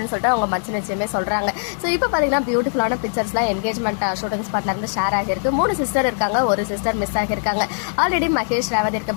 சொல்லிட்டு அவங்க மச்ச நிச்சயமே சொல்றாங்க. ஸோ இப்போ பாத்தீங்கன்னா பியூட்டிஃபுல்லான பிக்சர்ஸ்லாம் என்கேஜ்மெண்ட் ஷூட்டிங் ஸ்பாட்ல இருந்து ஷேர் ஆகிருக்கு. 3 சிஸ்டர் இருக்காங்க, ஒரு சிஸ்டர் மிஸ் ஆகிருக்காங்க. ஆல்ரெடி மகேஷ் ரேவதி இருக்க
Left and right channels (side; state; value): right; silent; digital silence